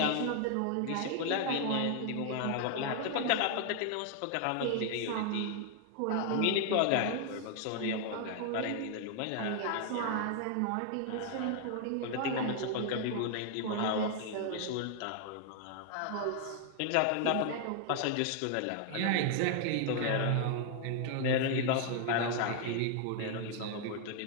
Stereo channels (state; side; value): different; both; correlation 0.00